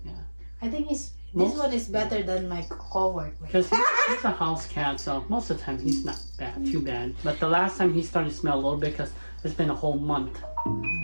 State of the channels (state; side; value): inverted; both; correlation -1.00